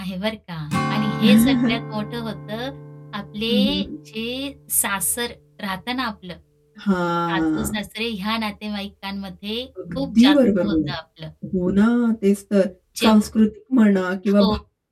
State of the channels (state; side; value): identical; both; correlation 1.00